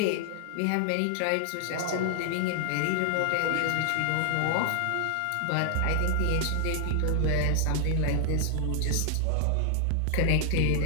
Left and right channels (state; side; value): different; both; correlation 0.00